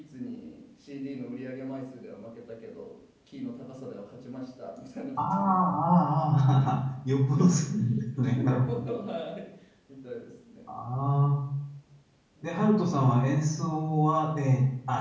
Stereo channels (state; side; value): identical; both; correlation 1.00